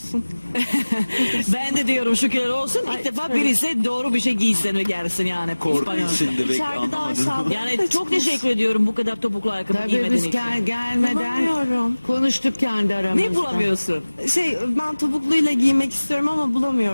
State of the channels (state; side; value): inverted; both; correlation -1.00